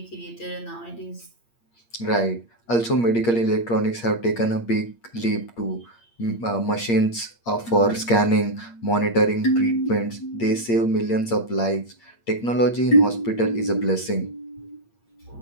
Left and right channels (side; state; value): right; late; 8.6 ms